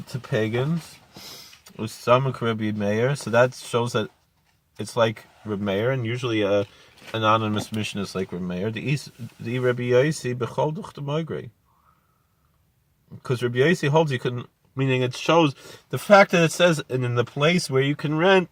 to pagans. So that shows that it's like Reb Meir, and usually an anonymous mission is like Reb Meir. The Rabbi Yossi bechol duch the migrate. Because Rabbi Yossi holds you can, meaning it shows the fact that it says and in the place where you can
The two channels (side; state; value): both; identical; correlation 1.00